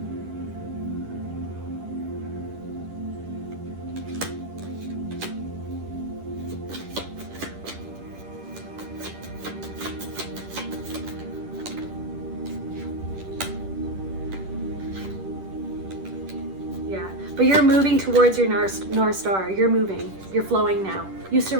But you're moving towards your North Star. You're moving. You're flowing now. You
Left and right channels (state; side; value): late; left; 10 ms